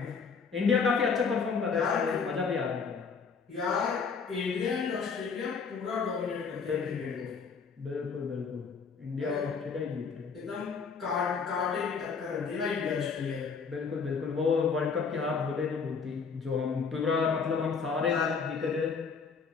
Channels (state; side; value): quieter; right; 5.5 dB